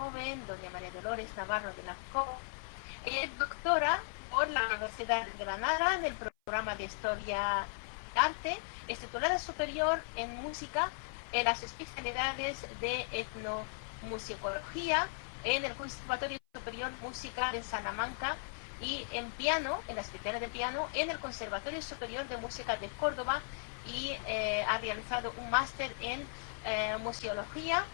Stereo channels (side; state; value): right; silent; 53 dB below the other